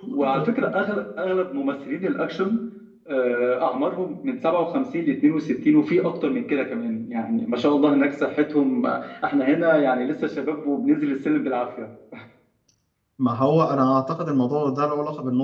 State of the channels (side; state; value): both; identical; correlation 1.00